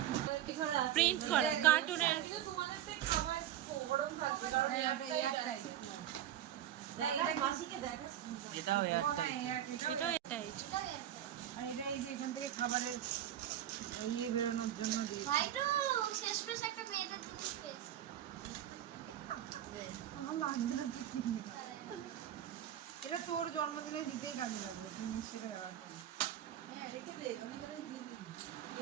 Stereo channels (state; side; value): quieter; left; 11.6 dB